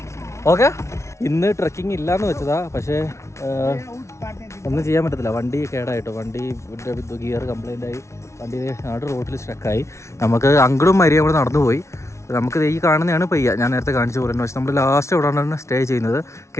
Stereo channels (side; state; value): right; late; 0.13 ms